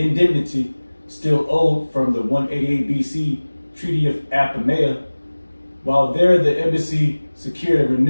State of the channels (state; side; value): inverted; both; correlation -1.00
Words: still owed from the 188 BC Treaty of Apamea. While there, the embassy secured a